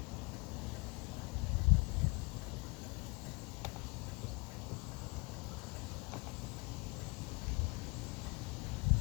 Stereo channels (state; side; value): quieter; right; 29.7 dB